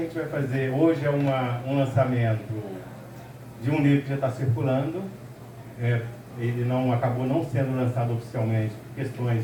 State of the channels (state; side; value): identical; both; correlation 1.00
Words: gente vai fazer? Hoje é um lançamento de um livro que já está circulando. Ele acabou não sendo lançado oficialmente por questões